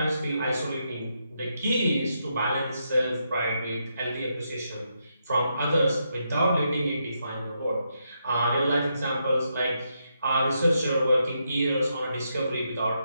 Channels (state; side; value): inverted; both; correlation -0.81